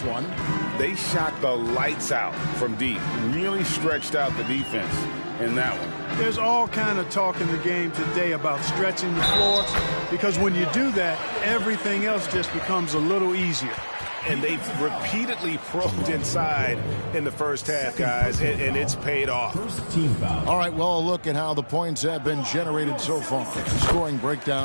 one. They shot the lights out from deep. Really stretched out the defense in that one. There's all kind of talk in the game today about stretching the floor, because when you do that, everything else just becomes a little easier. And they've repeatedly probed inside in the first half, guys, and it's paid off. All right, well, a look at how the points have been generated so far. Scoring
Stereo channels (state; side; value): inverted; both; correlation -1.00